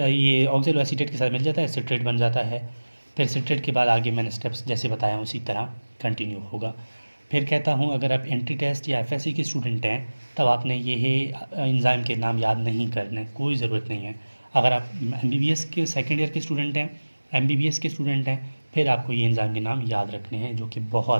ऑक्सैलोएसिटेट के साथ मिल जाता है, सिट्रेट बन जाता है। फिर सिट्रेट के बाद आगे मैंने स्टेप्स जैसे बताया उसी तरह कंटिन्यू होगा। फिर कहता हूँ, अगर आप एंट्री टेस्ट या FSC के स्टूडेंट हैं तब आपने ये एंजाइम के नाम याद नहीं करने, कोई ज़रूरत नहीं है। अगर आप MBBS के सेकेंड ईयर के स्टूडेंट हैं, MBBS के स्टूडेंट हैं, फिर आपको ये एंजाइम के नाम याद रखने हैं, जो कि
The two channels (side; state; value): both; inverted; correlation -1.00